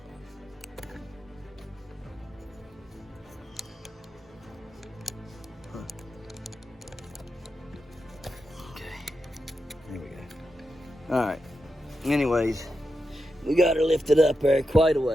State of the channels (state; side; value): normal; both; correlation 0.88